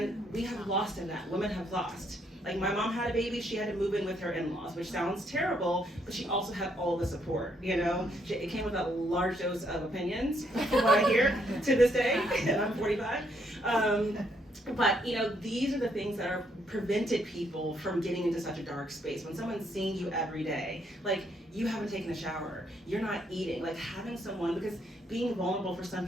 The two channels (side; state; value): both; normal; correlation 0.73